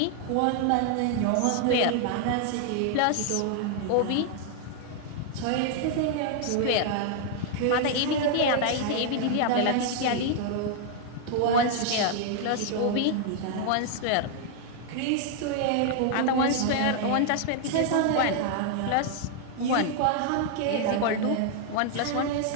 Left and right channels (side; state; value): both; different; correlation 0.00